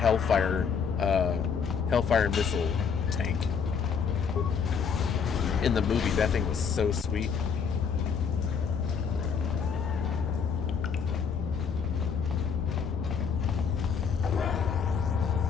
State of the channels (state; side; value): quieter; right; 6.4 dB